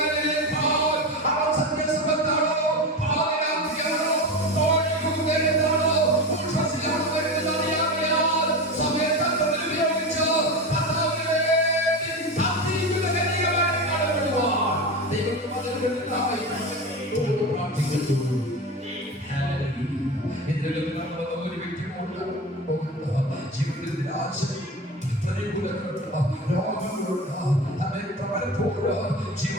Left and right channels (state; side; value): normal; both; correlation 0.24